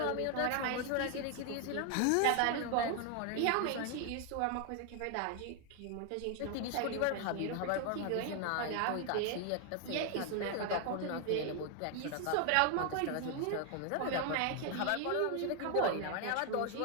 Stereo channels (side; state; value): both; different; correlation 0.00